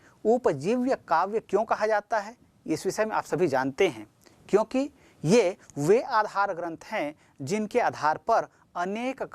उपजीव्य काव्य क्यों कहा जाता है, इस विषय में आप सभी जानते हैं, क्योंकि ये वे आधार ग्रंथ हैं जिनके आधार पर अनेक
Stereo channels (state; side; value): identical; both; correlation 1.00